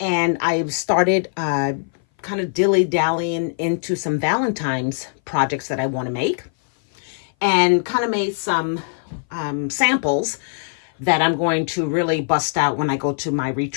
And I started kind of dilly-dallying into some Valentine's projects that I want to make, and kind of made some samples that I'm going to really bust out when I go to my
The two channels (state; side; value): silent; right; 60 dB below the other